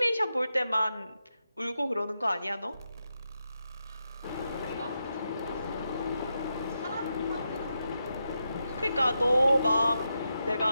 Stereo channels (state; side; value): inverted; both; correlation -0.86